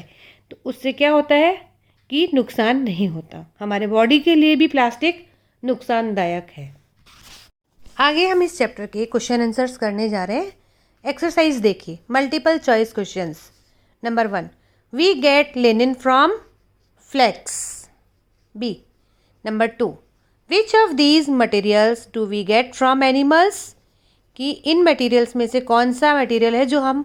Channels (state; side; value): identical; both; correlation 1.00